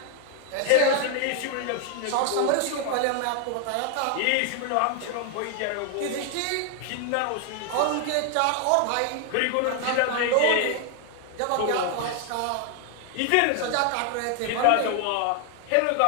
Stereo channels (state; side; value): different; both; correlation 0.00